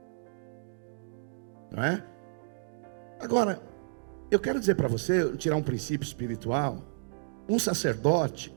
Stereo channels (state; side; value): silent; left; digital silence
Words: Não é? Agora, eu quero dizer para você, tirar um princípio espiritual. Um sacerdote